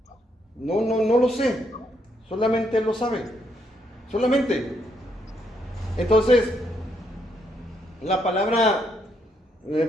No lo sé. Solamente Él lo sabe. Solamente. Entonces, la palabra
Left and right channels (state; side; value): normal; both; correlation 0.75